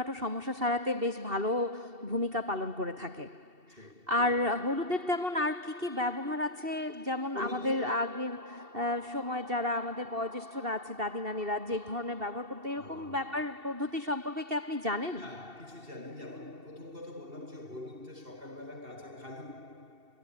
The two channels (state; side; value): late; left; 2.7 ms